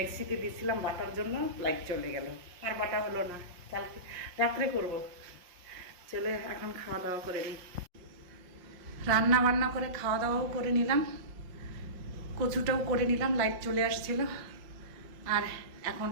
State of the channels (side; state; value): left; late; 5.6 ms